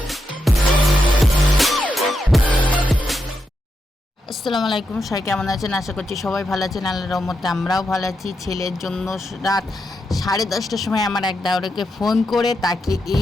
আসসালামু আলাইকুম, সবাই কেমন আছেন? আশা করছি সবাই ভালো আছেন। আল্লাহর রহমতে আমরাও ভালো আছি। ছেলের জন্য রাত 10:30টার সময় আমার এক দাওয়ারকে ফোন করে তাকে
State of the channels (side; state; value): both; normal; correlation 0.85